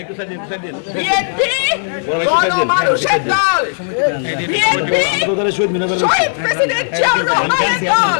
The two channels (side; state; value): right; silent; 64 dB below the other